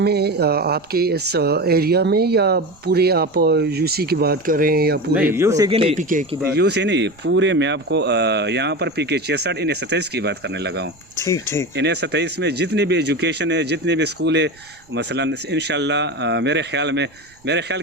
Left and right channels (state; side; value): noise; right; rumble, 30 dB below the sound